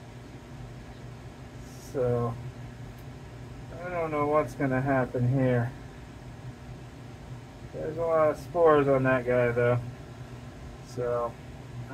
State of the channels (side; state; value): both; identical; correlation 1.00